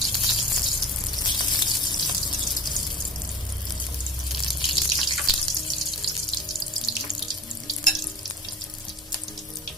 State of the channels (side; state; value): both; normal; correlation 0.38